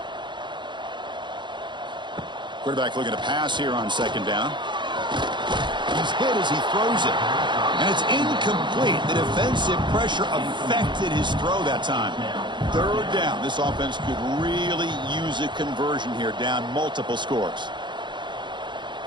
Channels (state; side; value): late; left; 0.23 ms